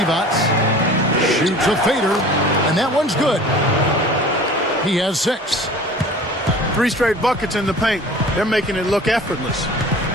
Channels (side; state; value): both; normal; correlation 0.43